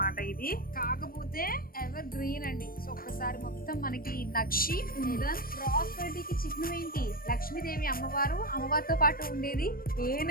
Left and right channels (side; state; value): right; late; 0.42 ms